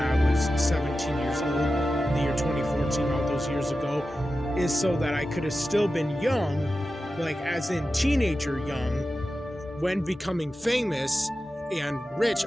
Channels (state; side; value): normal; both; correlation 0.92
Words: was 17 years old, in the year 2014, all those years ago, is so that I could have still been young, like, as in teenager young, when becoming famous, and rich